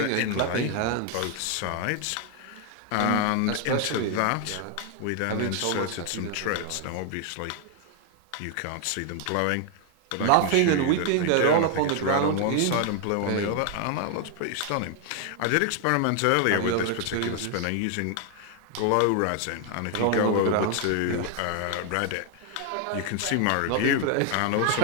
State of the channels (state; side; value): different; both; correlation 0.00